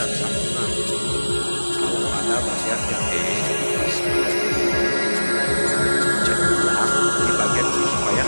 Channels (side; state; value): both; inverted; correlation -1.00